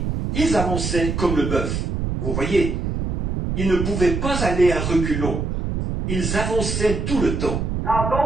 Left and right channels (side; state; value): right; noise; rumble, 2 dB below the sound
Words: ils avançaient comme le bœuf. Vous voyez, ils ne pouvaient pas aller à reculons. Ils avançaient tout le temps. Now